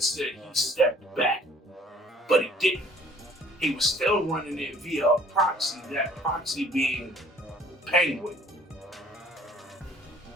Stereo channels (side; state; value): both; normal; correlation 0.55